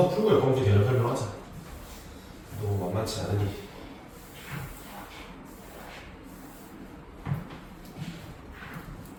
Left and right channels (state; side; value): identical; both; correlation 1.00